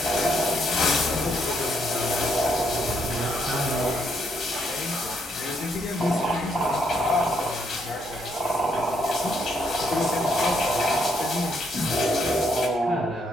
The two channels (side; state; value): both; normal; correlation 0.74